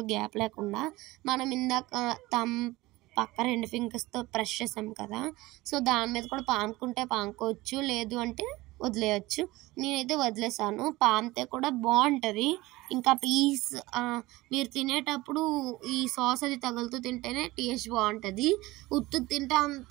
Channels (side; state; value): left; quieter; 19.6 dB